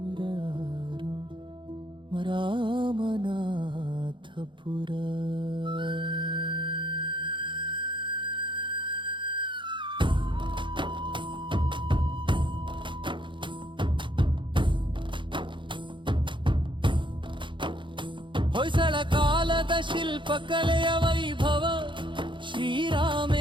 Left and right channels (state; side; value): late; left; 0.23 ms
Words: ರಾಮನಾಥಪುರ. ಹೊಯ್ಸಳ ಕಾಲದ ಶಿಲ್ಪಕಲೆಯ ವೈಭವ,